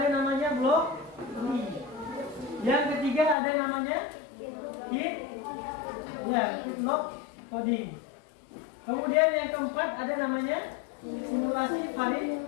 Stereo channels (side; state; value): right; drops out; at 3.4 s